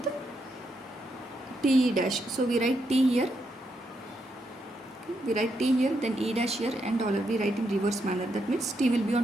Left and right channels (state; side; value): normal; both; correlation 0.80